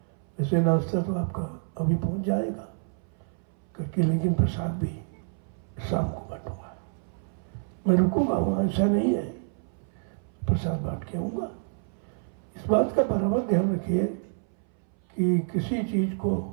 वैसे नाश्ता तो आपका अभी पहुंच जाएगा करके, लेकिन प्रसाद भी शाम को बांटूंगा। मैं रुकूंगा वहां, ऐसा नहीं है, प्रसाद बांट के आऊंगा। इस बात का बराबर ध्यान रखिए कि किसी चीज को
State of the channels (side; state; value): left; silent; 59 dB below the other